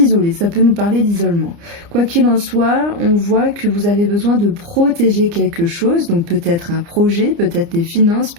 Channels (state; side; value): late; left; 29 ms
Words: ça peut nous parler d'isolement. Quoi qu'il en soit, on voit que vous avez besoin de protéger quelque chose, donc peut-être un projet, peut-être des finances,